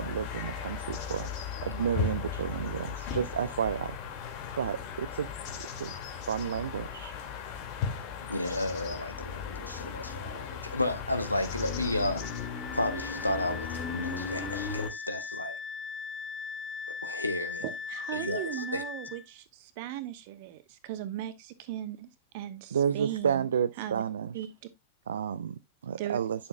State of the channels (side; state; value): both; inverted; correlation -0.47